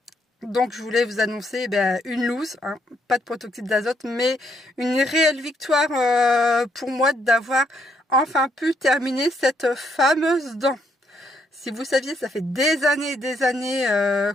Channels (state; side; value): normal; both; correlation 0.73